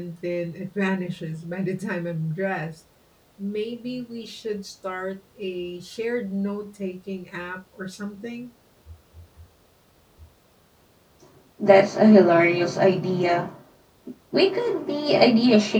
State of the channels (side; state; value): both; identical; correlation 1.00